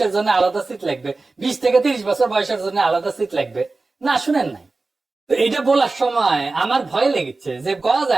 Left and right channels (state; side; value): quieter; left; 3.5 dB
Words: জন্য আলাদা সিট লাগবে, 20 থেকে 30 বছর বয়সের জন্য আলাদা সিট লাগবে? না, শুনেন নাই। তো এটা বলার সময় আমার ভয় লেগেছে যে কওয়া